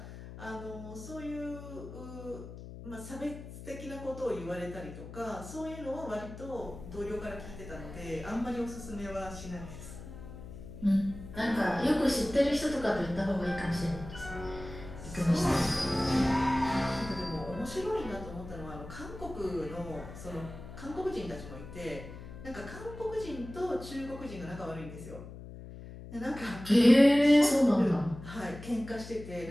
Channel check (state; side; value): noise; left; hum, 13 dB below the sound